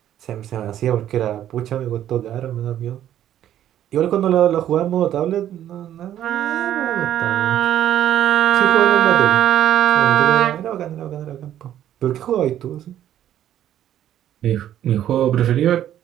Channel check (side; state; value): left; quieter; 11.3 dB